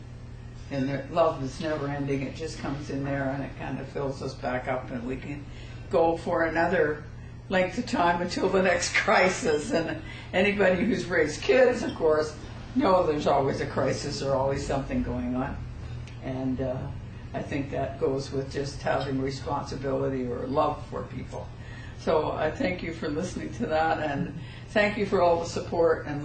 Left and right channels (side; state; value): both; identical; correlation 1.00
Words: the love is never ending. It just comes in there and it kind of fills us back up, and we can go for another length of time until the next crisis. And anybody who's raised kids, of course, know there's always a crisis or always something going on. And I think that goes with just having responsibility or love for people. So I thank you for listening to that, and thank you for all the support and